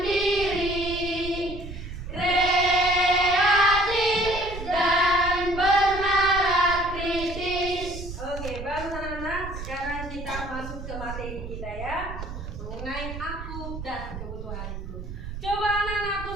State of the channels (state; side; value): noise; right; rumble, 9 dB below the sound